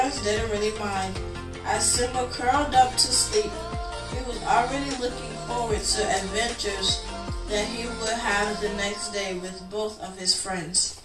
didn't really mind. As Simba curled up to sleep, he was already looking forward to adventures that he would have the next day with both of his friends.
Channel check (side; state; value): both; identical; correlation 1.00